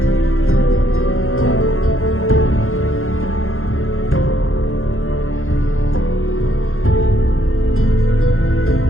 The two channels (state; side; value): late; right; 0.60 ms